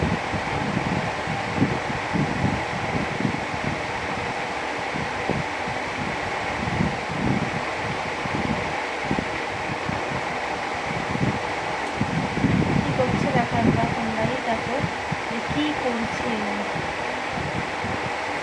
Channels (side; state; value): both; identical; correlation 1.00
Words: কী করছে দেখো একবার তোমরাই দেখো যে কী করছে।